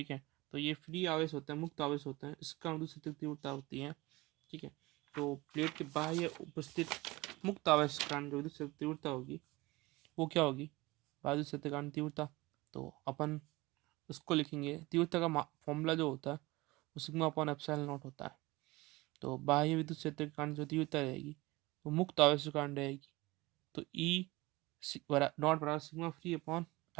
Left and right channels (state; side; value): quieter; left; 21.5 dB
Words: है, तो ये फ्री आवेश होता है, मुक्त आवेश होता है, इसका विद्युत क्षेत्र की तीव्रता होती है। ठीक है, तो प्लेट के बाह्य उपस्थित मुक्त आवेश के कारण जो विद्युत क्षेत्र की तीव्रता होगी वो क्या होगी, बाह्य विद्युत क्षेत्र के कारण तीव्रता। तो अपन उसको लिखेंगे, तीव्रता का फॉर्मूला जो होता है वो सिग्मा अपॉन एप्सिलॉन नॉट होता है। तो बाह्य विद्युत क्षेत्र के कारण जो तीव्रता रहेगी वो मुक्त आवेश के कारण रहेगी, तो ई नॉट बराबर sigma free upon